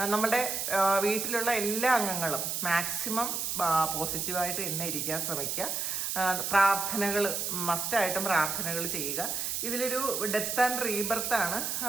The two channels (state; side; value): noise; right; hiss, 1 dB below the sound